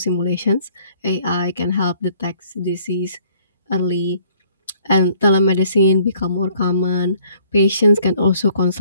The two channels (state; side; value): inverted; both; correlation -0.59